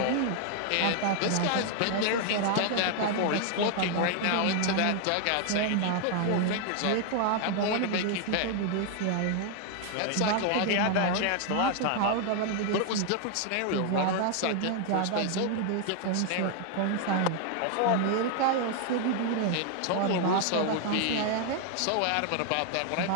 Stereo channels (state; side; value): different; both; correlation 0.00